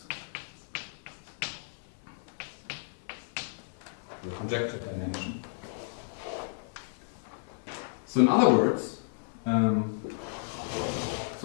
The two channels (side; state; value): right; silent; 56 dB below the other